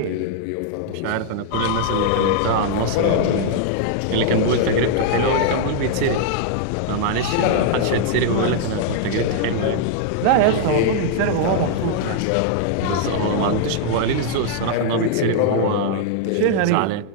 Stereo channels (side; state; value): both; different; correlation 0.00